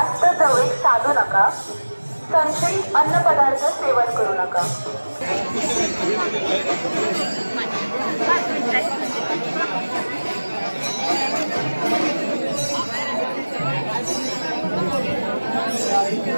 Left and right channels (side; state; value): both; inverted; correlation -1.00